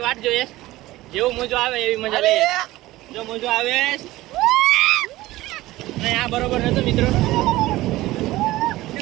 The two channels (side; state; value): left; quieter; 17.5 dB